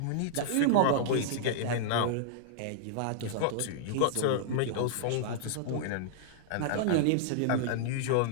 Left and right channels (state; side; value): different; both; correlation -0.01